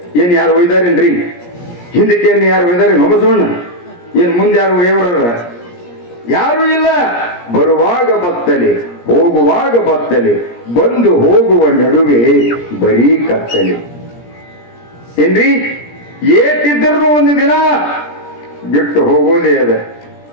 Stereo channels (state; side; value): late; right; 17 ms